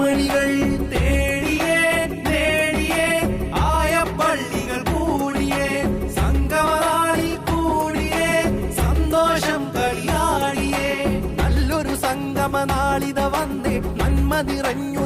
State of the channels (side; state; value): both; identical; correlation 1.00